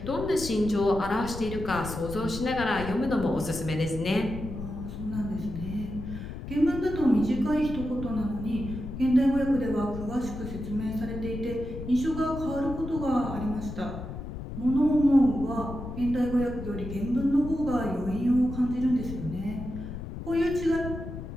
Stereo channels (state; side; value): noise; left; rumble, 8 dB below the sound